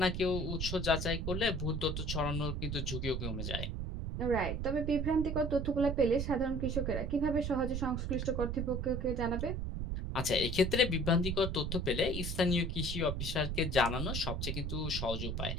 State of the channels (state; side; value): noise; right; rumble, 2 dB below the sound